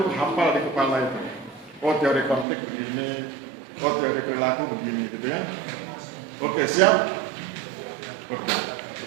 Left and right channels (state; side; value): drops out; left; at 2.5 s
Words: hafal di kepala itu. Oh, teori konflik begini, oh teori perilaku begini gitu ya. Oke, siap? Oke.